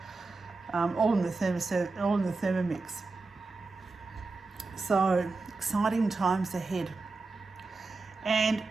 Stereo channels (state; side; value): quieter; left; 3.8 dB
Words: All in the Thermomix. So exciting times ahead. And